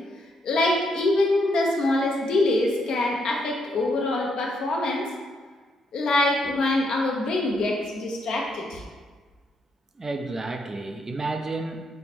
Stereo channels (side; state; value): both; normal; correlation 0.76